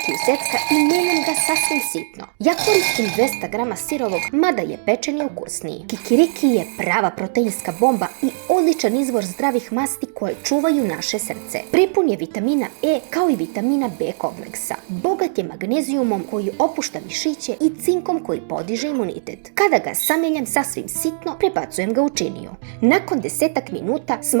u secka i mijenjam ga sasvim sitno. Ja koristim 200 grama sirovog, mada je pečeni ukusniji. Kikiriki je prava proteinska bomba i odličan izvor zdravih masti koje čuvaju naše srce. Prepun je vitamina E kao i vitamina B kompleksa. Bogat je magnezijumom koji opušta mišiće i cinkom koji podiže imunitet. Kada ga sameljam sasvim sitno, prebacujem ga u činiju. Nakon 10 minuta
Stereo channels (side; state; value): left; silent; digital silence